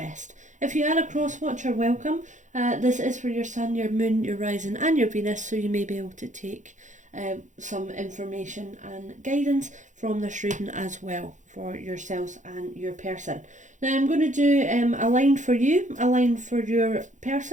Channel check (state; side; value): late; left; 0.36 ms